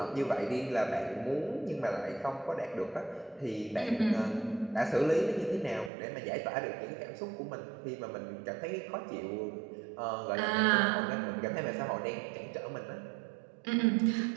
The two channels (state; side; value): drops out; left; at 5.9 s